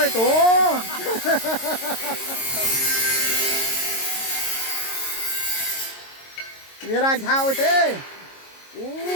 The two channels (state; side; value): late; right; 22 ms